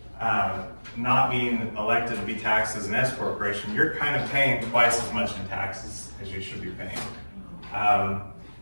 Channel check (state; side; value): inverted; both; correlation -1.00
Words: not being elected to be taxed as an S corporation, you're kind of paying twice as much in taxes as you should be paying.